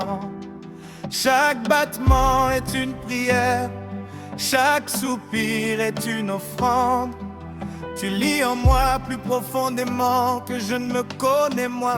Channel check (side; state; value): both; identical; correlation 1.00